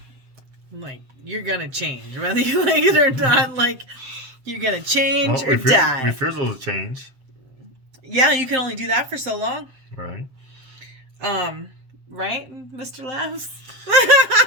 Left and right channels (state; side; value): late; left; 7.7 ms